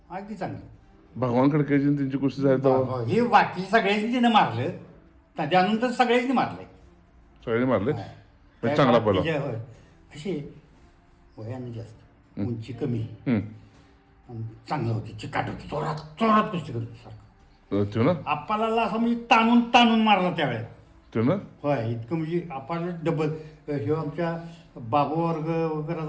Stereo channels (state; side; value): identical; both; correlation 1.00